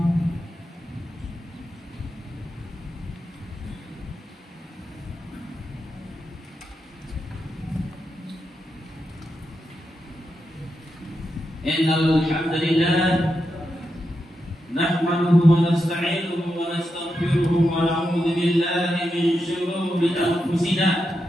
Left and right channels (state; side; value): normal; both; correlation 0.86